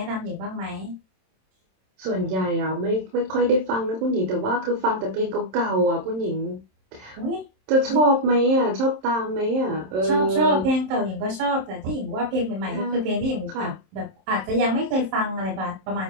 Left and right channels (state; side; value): late; left; 27 ms